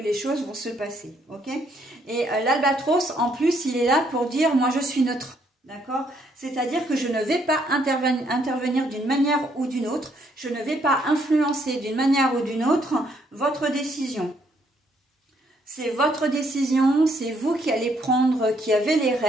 choses vont se passer, ok? Et l'albatros, en plus, il est là pour dire moi je suis neutre. D'accord? C'est-à-dire que je ne vais pas intervenir d'une manière ou d'une autre, je ne vais pas influencer d'une manière ou d'une autre votre décision. C'est votre décision, c'est vous qui allez prendre, qui avez les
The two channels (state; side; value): normal; both; correlation 0.70